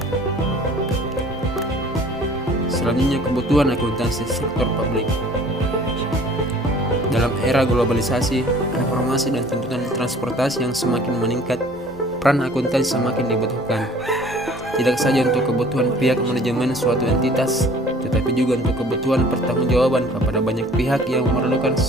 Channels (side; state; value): both; normal; correlation 0.51